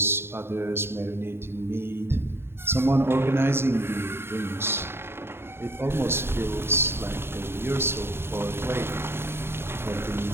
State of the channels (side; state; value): left; late; 0.11 ms